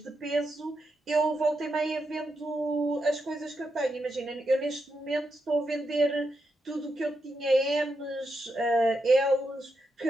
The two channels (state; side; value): normal; both; correlation 0.84